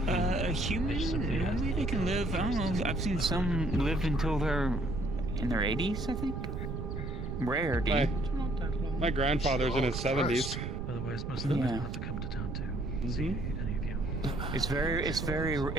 it. A human? Maybe they can live, I don't know, I've seen some live until they're in their 80s, I think. Rare, dude. My grandfather's in his 70s. Otherwise, most of them have to come to town to see any of you. It's very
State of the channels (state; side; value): noise; right; rumble, 5 dB below the sound